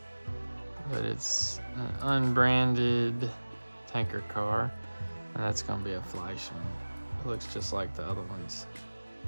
but it's an unbranded tanker car, and that's gonna be a Fleischmann. It looks just like the other ones.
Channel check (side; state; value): both; inverted; correlation -1.00